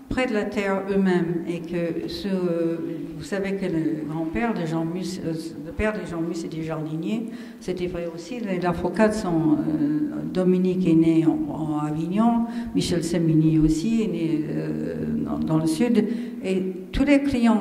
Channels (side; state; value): both; identical; correlation 1.00